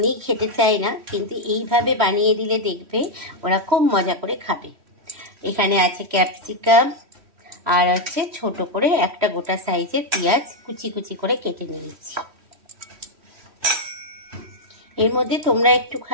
খেতে চায় না, কিন্তু এইভাবে বানিয়ে দিলে দেখবে ওরা খুব মজা করে খাবে। এখানে আছে ক্যাপসিকাম, আর আছে ছোট করে একটা গোটা সাইজের পেঁয়াজ কুচি কুচি করে কেটে নিয়েছি। এর মধ্যে তোমরা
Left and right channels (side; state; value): left; late; 3.1 ms